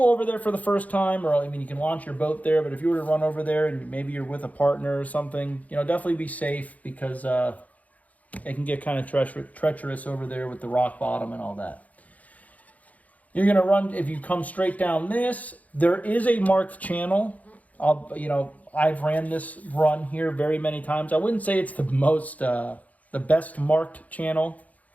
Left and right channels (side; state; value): right; late; 0.073 ms